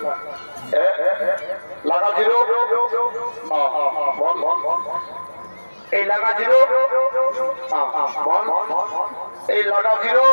লাগা জিরো এই লাগা জিরো বল, এই লাগা জিরো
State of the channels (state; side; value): inverted; both; correlation -1.00